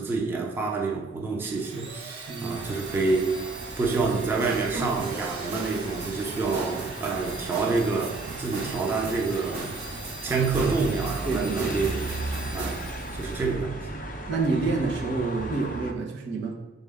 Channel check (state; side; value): quieter; left; 3.4 dB